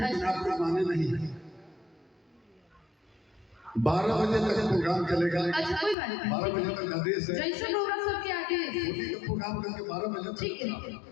आप लोग माने नहीं। 12 बजे तक प्रोग्राम चलेगा। अच्छा कोई बात नहीं, 12 बजे तक आदेश है। जैसे होगा सबके आगे होली का प्रोग्राम करके 12 बजे तक। ठीक है।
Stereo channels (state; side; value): drops out; right; at 6.0 s